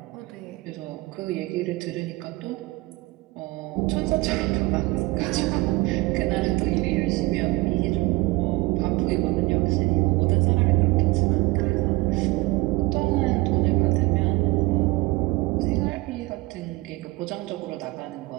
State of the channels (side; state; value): left; quieter; 21.8 dB